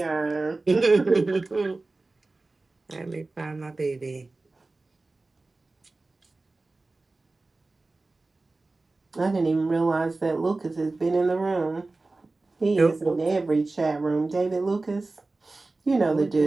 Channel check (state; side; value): quieter; left; 3.3 dB